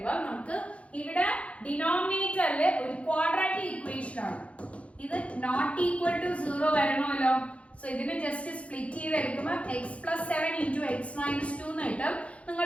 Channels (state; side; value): late; right; 0.063 ms